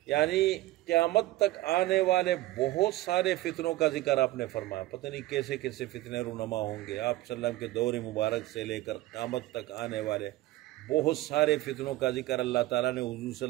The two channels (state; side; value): quieter; left; 17.2 dB